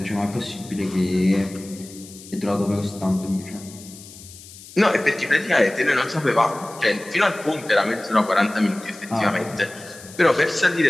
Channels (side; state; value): left; noise; hiss, 18 dB below the sound